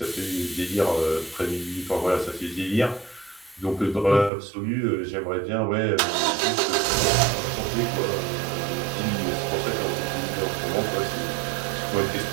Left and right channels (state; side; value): drops out; left; at 4.3 s